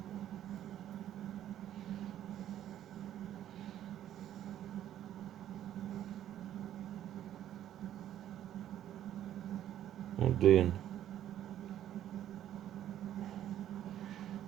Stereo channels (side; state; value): left; quieter; 11.5 dB